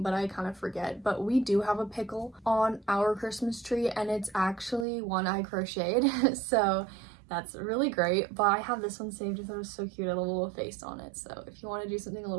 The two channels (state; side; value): drops out; left; at 4.9 s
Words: but I kind of forget. But we do have a pickle on our Christmas tree, and it's actually one I crocheted. So that's really great, but I have this one saved because it was so cute. I love a little face on it, so if you want to do something a